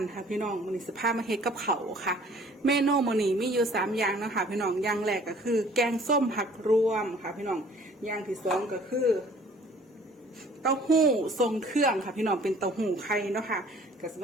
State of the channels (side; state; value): both; normal; correlation 0.53